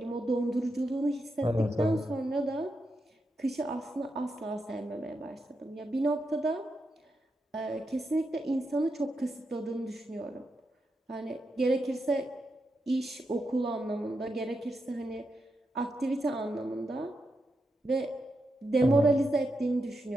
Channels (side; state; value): both; normal; correlation 0.85